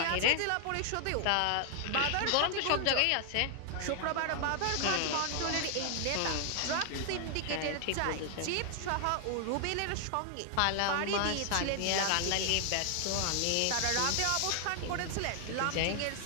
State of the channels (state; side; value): different; both; correlation 0.00